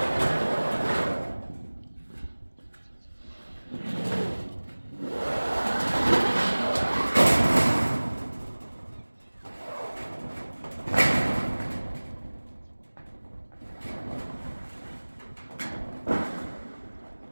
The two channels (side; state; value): both; inverted; correlation -1.00